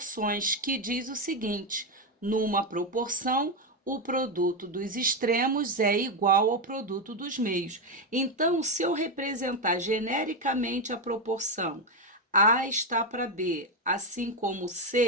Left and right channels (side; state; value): both; normal; correlation 0.08